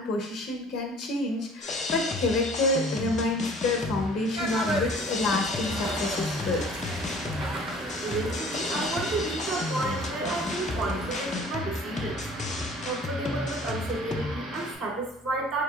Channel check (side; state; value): both; normal; correlation 0.50